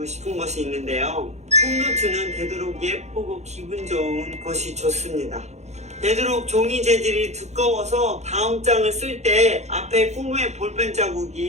싶은 것이 있는데요. 홈노트는 되도록 예쁘고 기분 좋은 것이 좋습니다. 되도록 종이 재질이 두꺼워서 다음 장을 쓸 때 앞에 꿈의 볼펜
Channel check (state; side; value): late; left; 0.33 ms